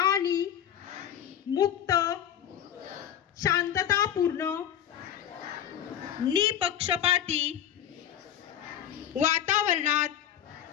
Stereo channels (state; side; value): quieter; right; 10.2 dB